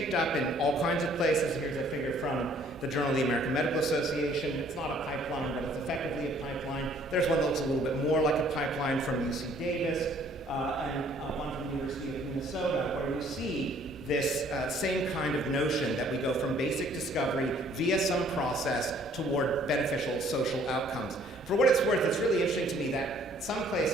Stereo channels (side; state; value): both; normal; correlation 0.59